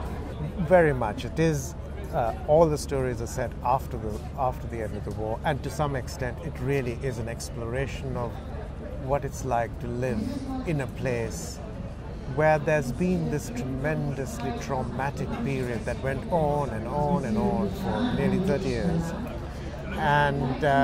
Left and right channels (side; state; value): both; identical; correlation 1.00